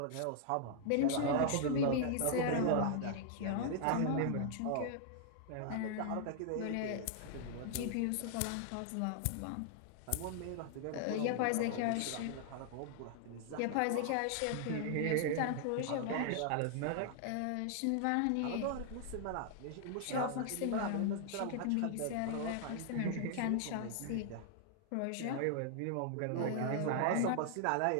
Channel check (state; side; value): different; both; correlation 0.00